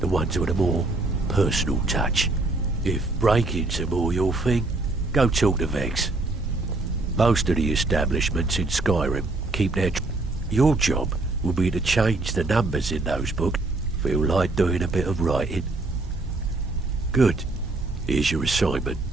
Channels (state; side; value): quieter; left; 3.1 dB